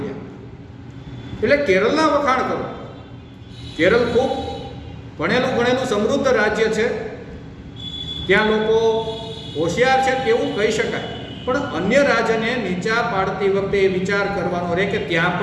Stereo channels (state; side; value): identical; both; correlation 1.00